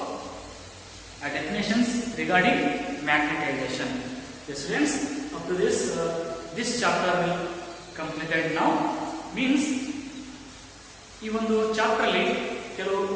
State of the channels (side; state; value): both; identical; correlation 1.00